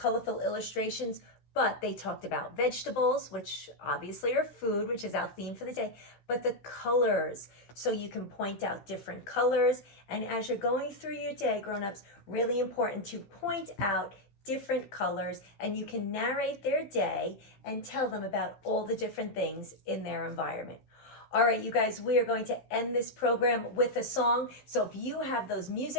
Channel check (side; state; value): right; late; 15 ms